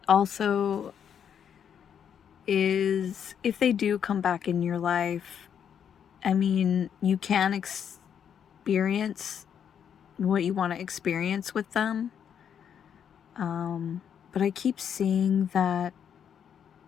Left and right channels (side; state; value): right; quieter; 8.3 dB